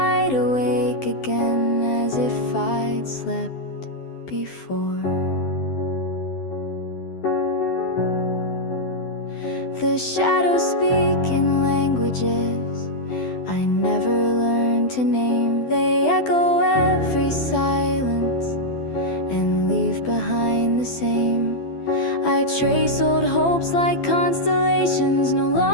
awake again as if I'd slept before. The shadows speak in languages I never learned to name. They echo every silence and leave behind the same. I trace old hopes like constellations no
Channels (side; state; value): right; late; 12 ms